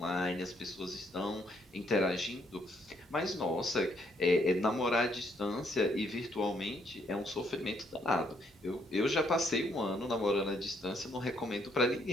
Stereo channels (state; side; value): normal; both; correlation 0.71